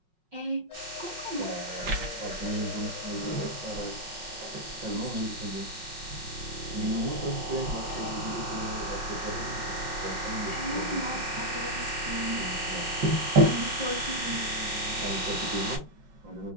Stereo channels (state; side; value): late; left; 5.4 ms